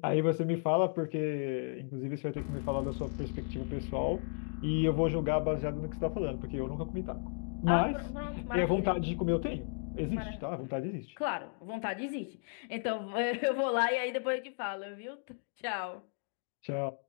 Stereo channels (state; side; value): silent; right; 55 dB below the other